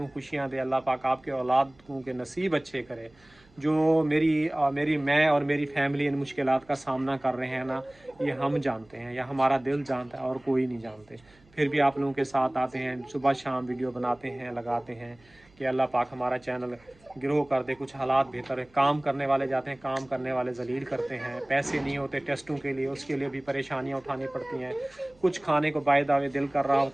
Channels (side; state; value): right; noise; hum, 29 dB below the sound